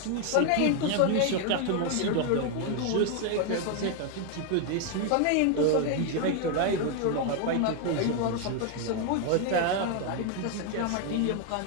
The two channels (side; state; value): both; different; correlation 0.01